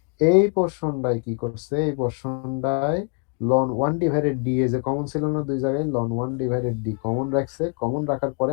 এই পোর্শনটাই কি করছে, এই পোর্শনটায় ln one divided D A যে কমন ছিল না দুই জায়গায়, ln one divided D common রাখছে। কমন রাখার পরে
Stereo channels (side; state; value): right; quieter; 38.6 dB